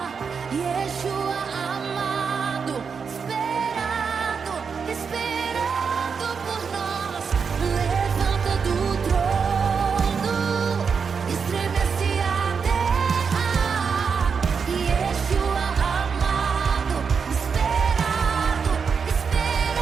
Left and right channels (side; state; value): left; quieter; 5.9 dB